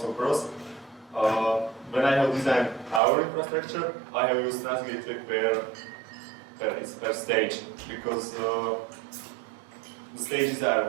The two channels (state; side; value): drops out; left; at 3.0 s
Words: pros. When I have designed our infrastructure, I have used transit gateway per stage, because the stages